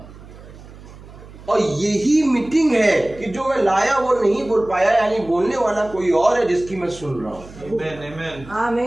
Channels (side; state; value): right; noise; hum, 18 dB below the sound